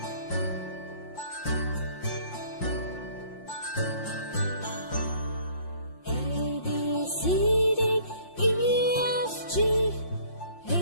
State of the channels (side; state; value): right; late; 5.6 ms